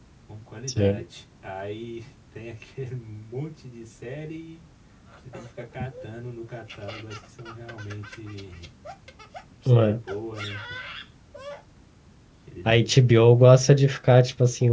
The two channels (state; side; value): identical; both; correlation 1.00